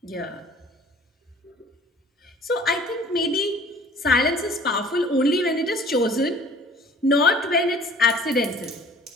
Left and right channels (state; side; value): normal; both; correlation 0.50